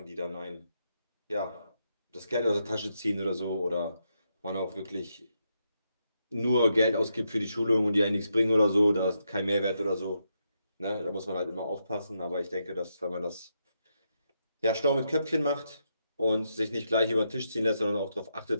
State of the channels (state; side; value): inverted; both; correlation -0.82